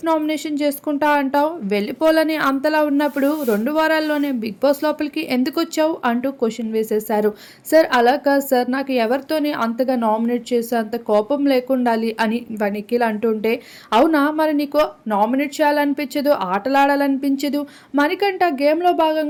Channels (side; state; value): both; identical; correlation 1.00